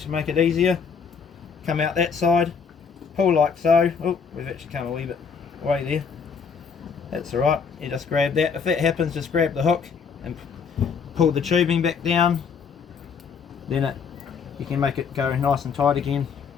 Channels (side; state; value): right; quieter; 6.1 dB